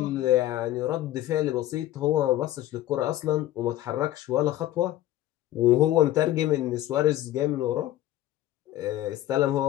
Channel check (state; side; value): quieter; right; 14.2 dB